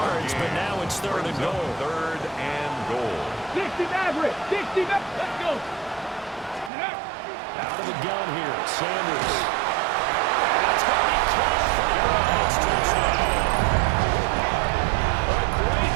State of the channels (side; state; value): left; drops out; at 6.7 s